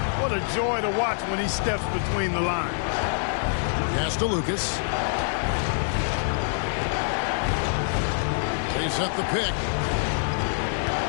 What a joy to watch when he steps between the lines. Pass to Lucas. They set the pick.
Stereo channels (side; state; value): right; silent; digital silence